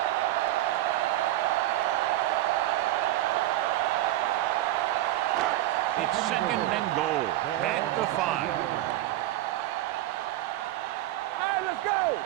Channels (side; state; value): left; quieter; 15.0 dB